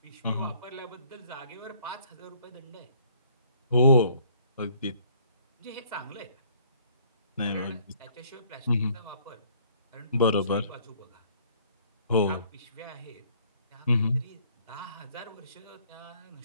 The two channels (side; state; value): both; inverted; correlation -0.60